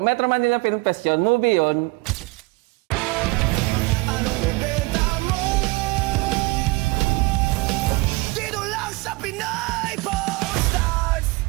Manila Film Fest yun. Movie yun. Anong bibenta mo? Dito lang sa Pinay Stars!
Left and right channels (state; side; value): quieter; left; 24.0 dB